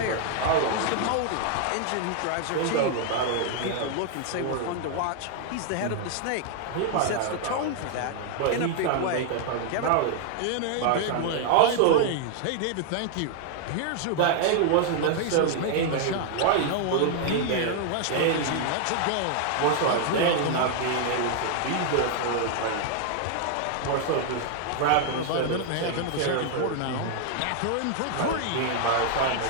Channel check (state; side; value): different; both; correlation 0.00